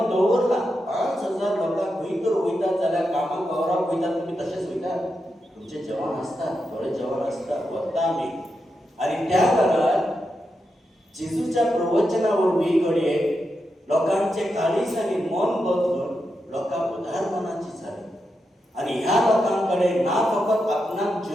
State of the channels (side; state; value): both; normal; correlation 0.86